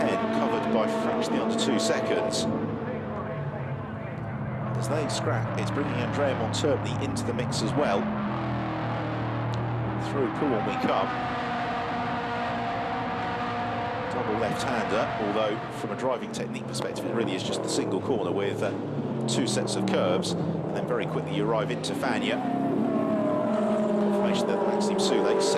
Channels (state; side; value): identical; both; correlation 1.00